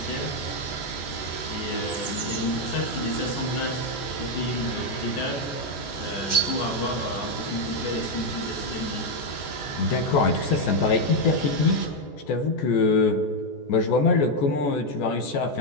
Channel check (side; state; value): right; late; 14 ms